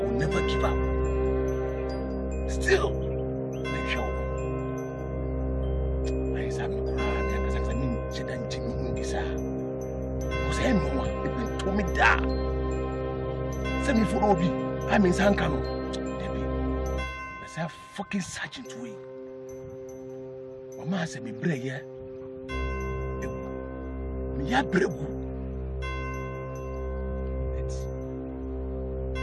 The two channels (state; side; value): identical; both; correlation 1.00